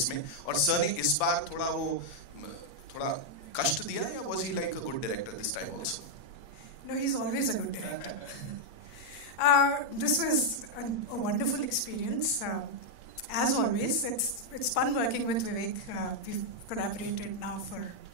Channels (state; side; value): late; right; 8.6 ms